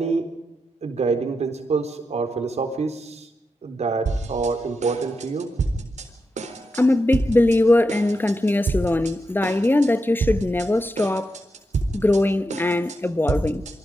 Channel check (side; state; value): both; normal; correlation 0.86